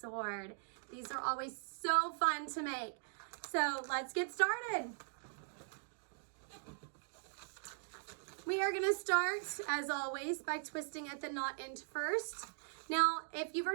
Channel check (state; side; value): silent; left; digital silence